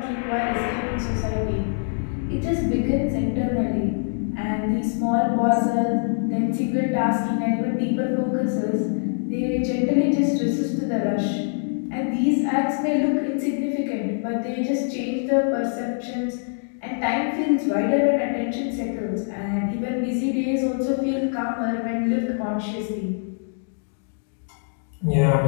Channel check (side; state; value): right; silent; digital silence